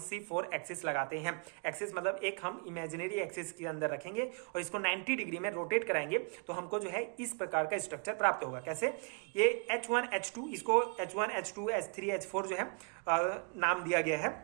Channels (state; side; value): quieter; left; 38.2 dB